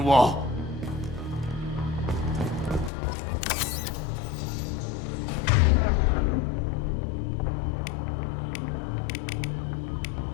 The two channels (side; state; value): right; drops out; at 2.9 s